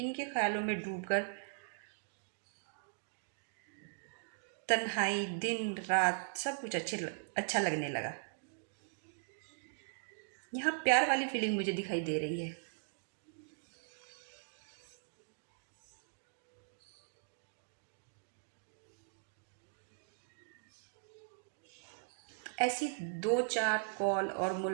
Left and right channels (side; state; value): left; silent; digital silence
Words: ख्यालों में डूबकर तन्हाई, दिन रात सब कुछ अच्छा लगने लगा। यहाँ प्यार वाली फीलिंग मुझे दिखाई दे रही है। ऐसी 2-4 कॉल और